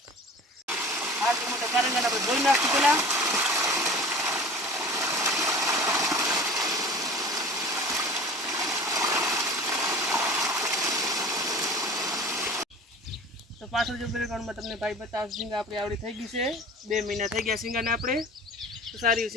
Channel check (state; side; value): normal; both; correlation 0.40